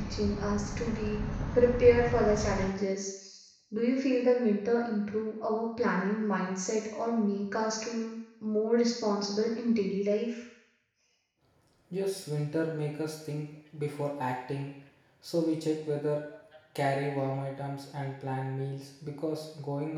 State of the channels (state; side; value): identical; both; correlation 1.00